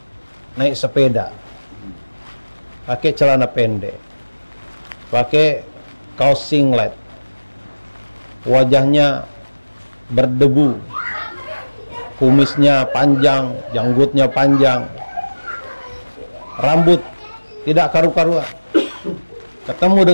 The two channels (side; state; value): both; inverted; correlation -1.00